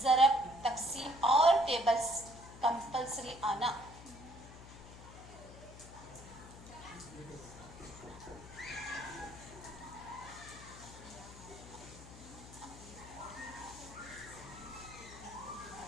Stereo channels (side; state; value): left; noise; hum, 16 dB below the sound